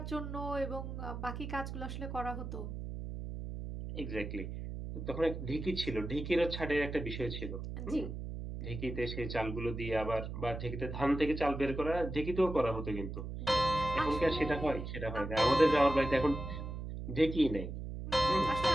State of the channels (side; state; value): right; noise; hum, 7 dB below the sound